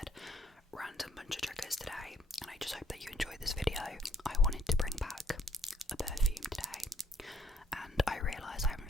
random bunch of triggers today, and I just hope that you enjoyed this video. I wanted to bring back a perfume today, and I realise I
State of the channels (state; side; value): normal; both; correlation 0.67